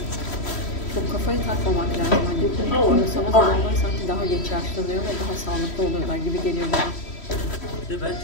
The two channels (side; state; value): right; late; 3.1 ms